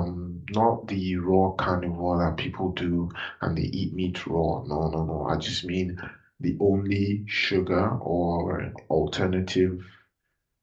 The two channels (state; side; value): identical; both; correlation 1.00